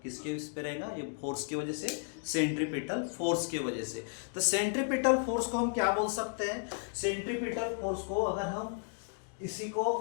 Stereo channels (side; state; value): right; silent; 55 dB below the other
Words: किसके इस पे रहेगा? ये फोर्स की वजह से, सेंट्रीपिटल फोर्स की वजह से। तो सेंट्रीपिटल फोर्स को हम क्या बोल सकते हैं? सेंट्रीपिटल फोर्स को अगर हम इसी को